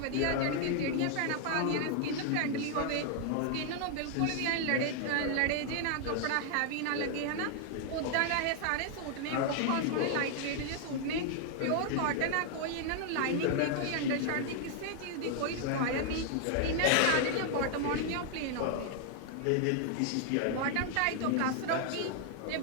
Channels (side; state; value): both; different; correlation 0.00